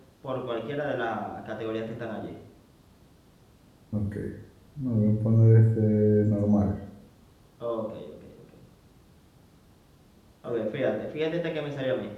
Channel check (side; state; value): both; identical; correlation 1.00